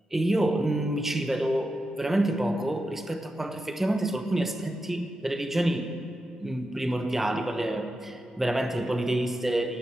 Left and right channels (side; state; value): both; normal; correlation 0.89